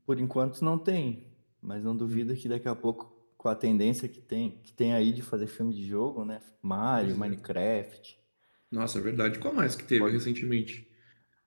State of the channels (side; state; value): both; inverted; correlation -1.00